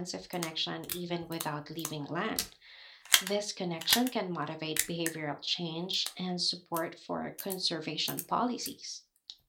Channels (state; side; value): identical; both; correlation 1.00